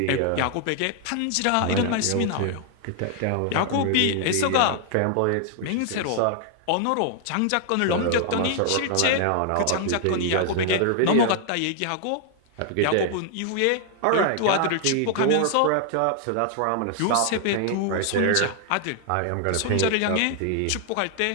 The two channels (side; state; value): both; different; correlation 0.00